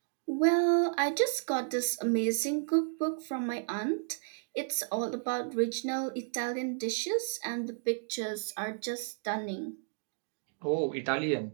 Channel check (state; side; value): silent; left; digital silence